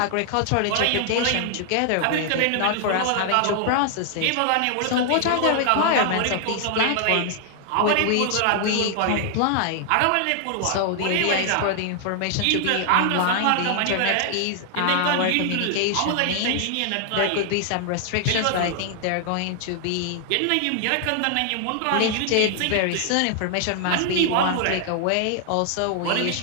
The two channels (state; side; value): different; both; correlation 0.00